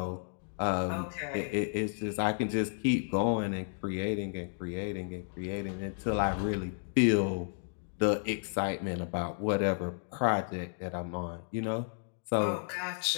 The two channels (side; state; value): right; silent; digital silence